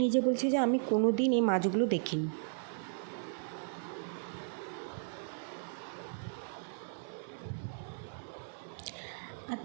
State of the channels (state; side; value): silent; left; digital silence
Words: নিজে বলছে যে আমি কোনো দিন এই মাছগুলো দেখিনি।